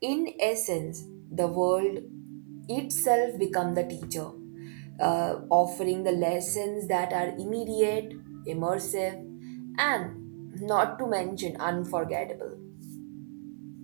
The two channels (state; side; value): silent; left; digital silence